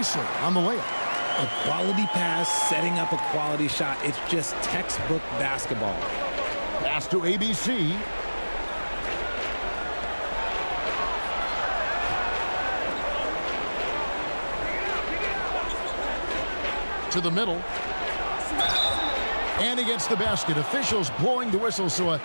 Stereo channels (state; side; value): inverted; both; correlation -1.00